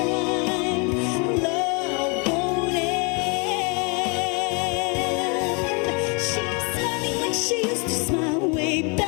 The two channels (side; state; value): right; quieter; 32.5 dB